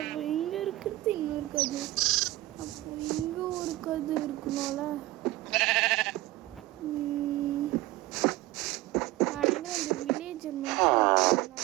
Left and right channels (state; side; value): quieter; left; 17.6 dB